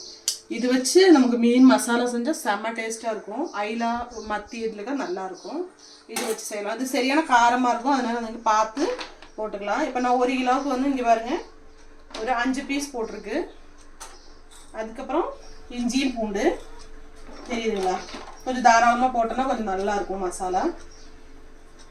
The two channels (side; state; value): both; identical; correlation 1.00